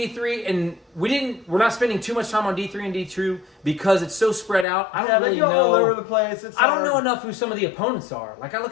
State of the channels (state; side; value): drops out; right; at 4.7 s